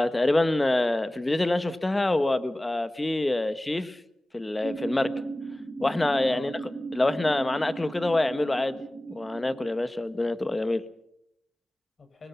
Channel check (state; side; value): normal; both; correlation 0.97